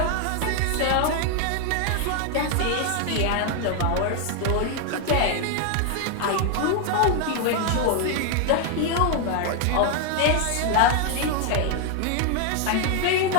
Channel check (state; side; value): different; both; correlation 0.00